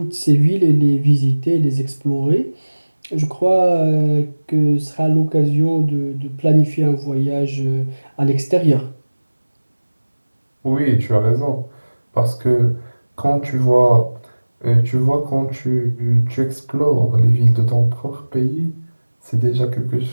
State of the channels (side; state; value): both; inverted; correlation -1.00